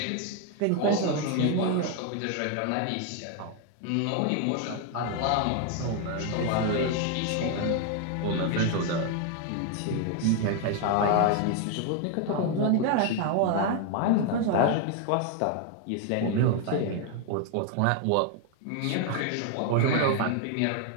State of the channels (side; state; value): both; different; correlation 0.01